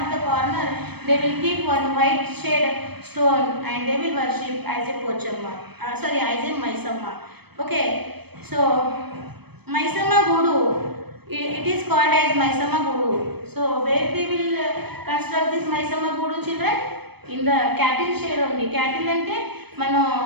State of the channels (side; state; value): left; late; 0.97 ms